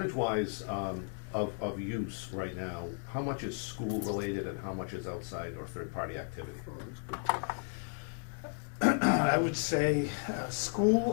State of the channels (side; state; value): right; silent; 55 dB below the other